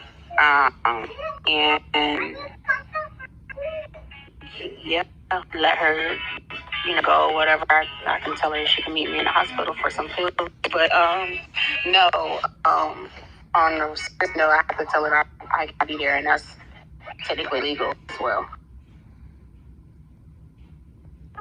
And yeah, let her, go whatever. I can tell her she can meet me in the hospital for some food. But no, on the serious note, I have to tell her I gotta be there, and that's technically legal as well.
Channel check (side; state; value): both; identical; correlation 1.00